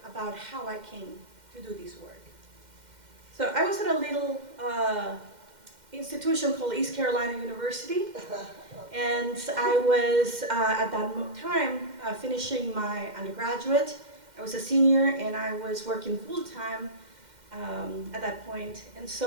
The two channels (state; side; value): late; left; 2.1 ms